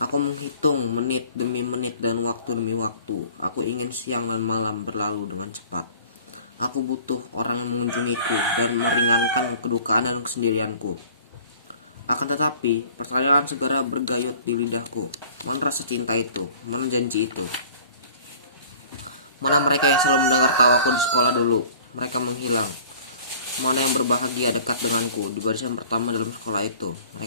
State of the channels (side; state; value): both; inverted; correlation -0.49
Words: Aku menghitung menit demi menit dan waktu demi waktu. Aku ingin siang dan malam berlalu dengan cepat. Aku butuh orang yang mengunjungiku dan meringankan kedukaan dan kesendirianku. Akan tetapi, pertanyaan segera bergayut di lidahku. Mana rasa cinta itu? Mana janji itu? Mana mereka yang selalu mendengar tawaku di sekolah dulu? Mereka menghilang. Mana yang berbahagia dekat denganku di barisan pertama dalam sekolah itu?